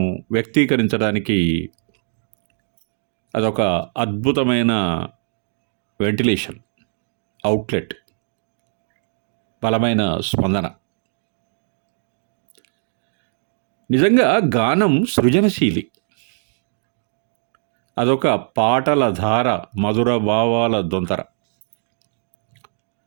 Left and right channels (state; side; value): silent; left; digital silence